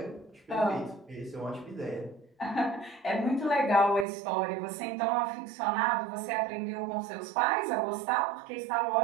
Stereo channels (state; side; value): drops out; left; at 4.0 s